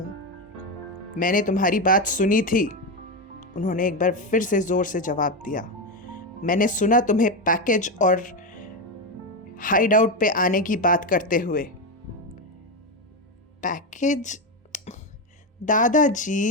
मैंने तुम्हारी बात सुनी थी, उन्होंने एक बार फिर से जोर से जवाब दिया। मैंने सुना तुम्हें पैकेज और हाइड आउट पे आने की बात करते हुए। पैकेज?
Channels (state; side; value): normal; both; correlation 0.11